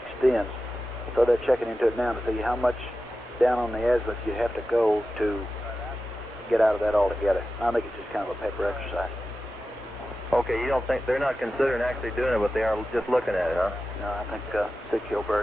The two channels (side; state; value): both; normal; correlation 0.93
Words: So they're checking into it now to see how much down on the azimuth you have to go to get out of that altogether. I think it's just kind of a paper exercise. Okay, you don't think they're not considering actually doing it, but they are just looking at it, huh? No, I think Sig